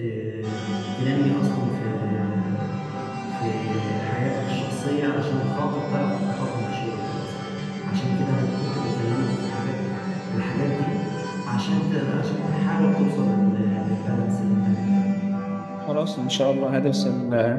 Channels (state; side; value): identical; both; correlation 1.00